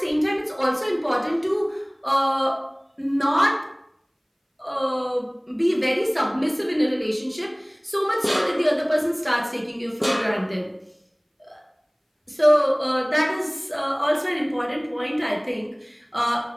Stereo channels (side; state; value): both; identical; correlation 1.00